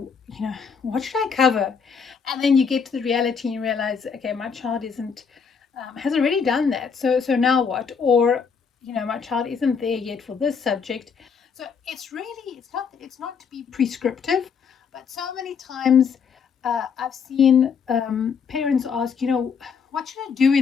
what should I cover? And then you get to the reality and you realize, okay, my child isn't has already done that. So now what? Or my child isn't there yet for this subject. So it's not to be prescriptive, but so many times I've seen parents ask, what should I do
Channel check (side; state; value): right; quieter; 6.1 dB